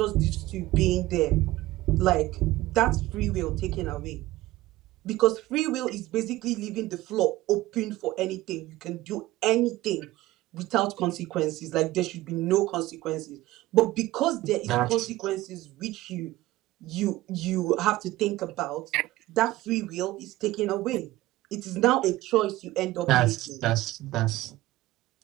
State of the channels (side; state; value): left; quieter; 17.4 dB